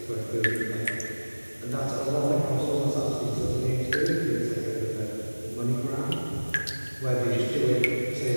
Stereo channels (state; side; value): inverted; both; correlation -1.00